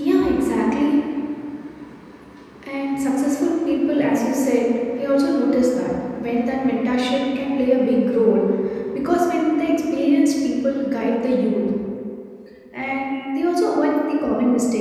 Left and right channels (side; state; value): both; identical; correlation 1.00